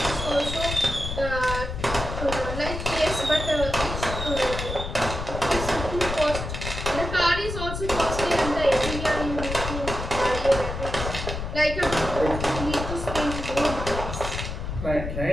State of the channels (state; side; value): noise; left; rumble, 5 dB below the sound